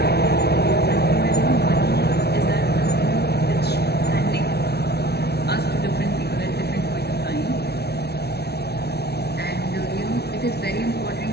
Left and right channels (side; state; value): right; late; 0.48 ms